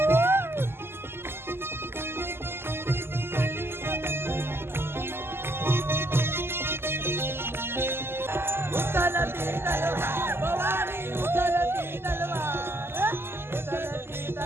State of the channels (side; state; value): left; late; 0.12 ms